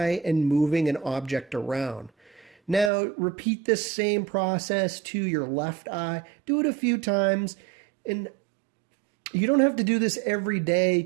and moving an object around. Now repeat this same process to your left eye. Do it a few times, and you don't have to do this every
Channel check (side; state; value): left; drops out; at 2.9 s